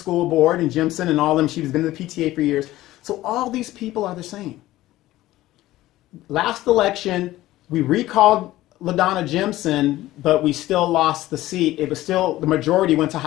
board, and Jimson and all of them, she's been in the PTA for years. So all these people are the same. Last election, we recalled LaDonna Jimson, but we still lost the seat. It was still, the majority went to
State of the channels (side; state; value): right; quieter; 16.0 dB